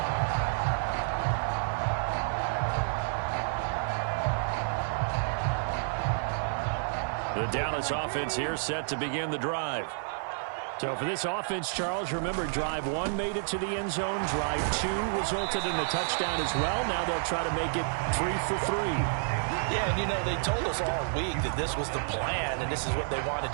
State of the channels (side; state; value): left; silent; 58 dB below the other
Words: The Dallas offense here set to begin the drive. So for this offense, Charles, remember, drive 1 made it to the end zone. Drive 2 resulted in a touchdown as well. Now they'll try to make it 3 for 3. Yeah, and you know, they told us all week that this was the plan and this is what they wanted